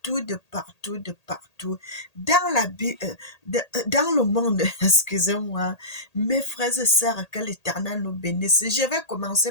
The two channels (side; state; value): right; late; 1.8 ms